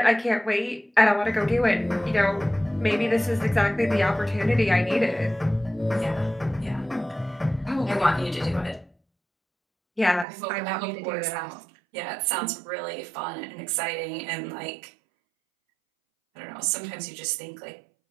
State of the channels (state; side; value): drops out; left; at 10.2 s